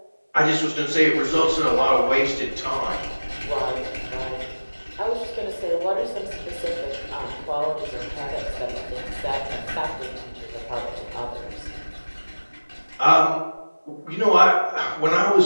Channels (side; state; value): both; inverted; correlation -1.00